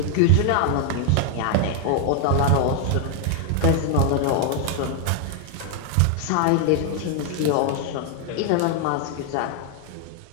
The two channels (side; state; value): both; different; correlation 0.00